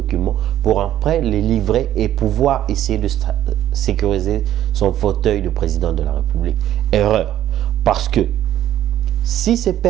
pour après les livrer et pouvoir essayer de sécuriser son fauteuil de président de la République. Erreur, parce que si ces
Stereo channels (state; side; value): quieter; left; 12.1 dB